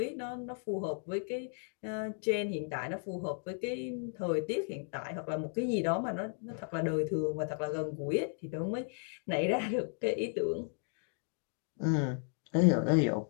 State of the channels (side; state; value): right; silent; 55 dB below the other